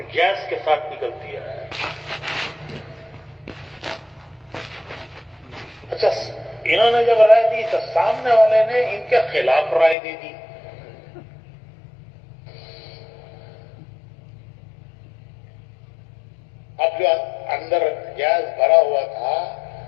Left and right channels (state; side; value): drops out; right; at 10.0 s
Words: گیس کے ساتھ نکلتی ہے. اچھا، انہوں نے جب رائے دی تو سامنے والے نے ان کے خلاف رائے دے دی. اب جو اندر گیس بھرا ہوا تھا